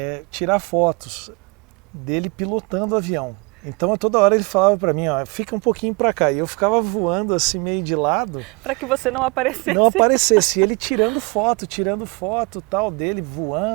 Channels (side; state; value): left; quieter; 29.7 dB